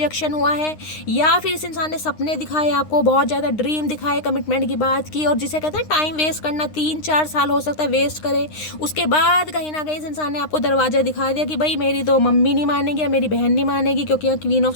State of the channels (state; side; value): late; right; 9.8 ms